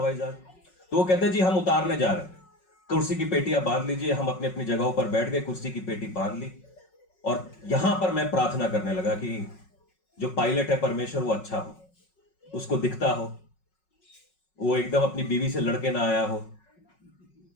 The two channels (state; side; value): late; right; 5.4 ms